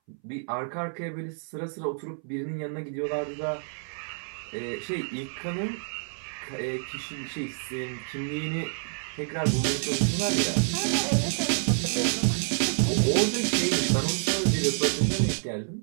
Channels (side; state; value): left; silent; 59 dB below the other